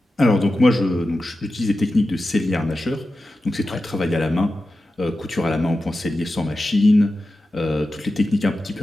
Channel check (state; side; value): normal; both; correlation 0.92